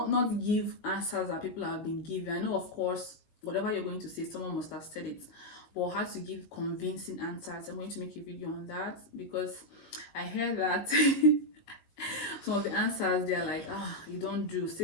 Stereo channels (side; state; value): right; late; 18 ms